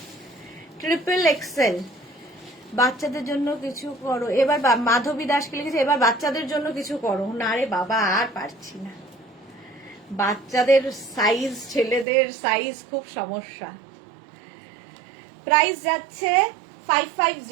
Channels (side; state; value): left; drops out; at 12.1 s